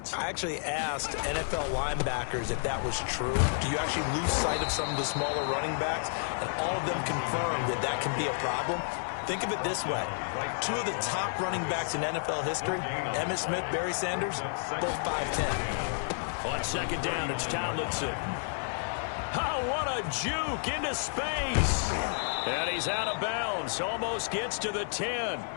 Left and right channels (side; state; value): right; silent; digital silence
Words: I actually asked NFL linebackers if that was true. Do you actually lose sight of some of the smaller running backs? And all of them confirmed that that can be a problem. Think of it this way. 2 of the top running backs in NFL history, Emmitt Smith, Barry Sanders, both 5'10". On 2nd down, it's Tomlinson. Oh, what a juke into space. And he's out of bounds. Almost gets to the 10.